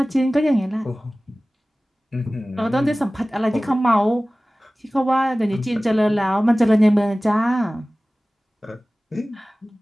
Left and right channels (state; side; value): normal; both; correlation 0.98